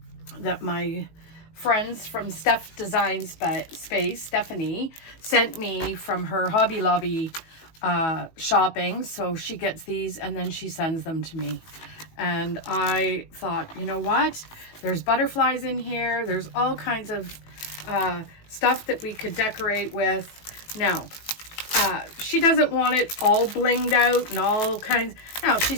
that my friends from Steph Design Space, Stephanie, sent me from her Hobby Lobby shopping. So she gets these and then she sends them to me. And I thought, you know what? There's butterflies in here. There's all kinds of stuff that we could decorate with. Now, she doesn't want it all blinged out and all kinds. Now,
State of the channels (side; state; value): right; late; 19 ms